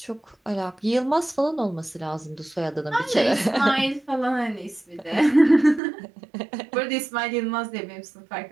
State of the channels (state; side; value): drops out; left; at 5.8 s